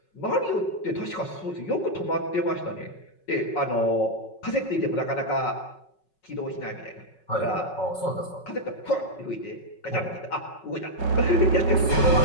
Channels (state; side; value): late; right; 5.4 ms